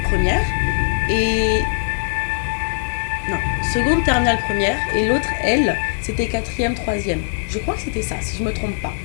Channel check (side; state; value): right; silent; 66 dB below the other